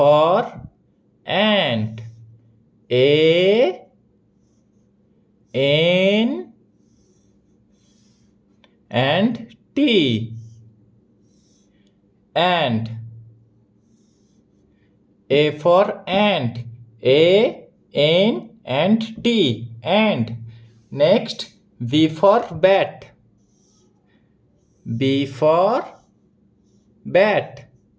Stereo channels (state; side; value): identical; both; correlation 1.00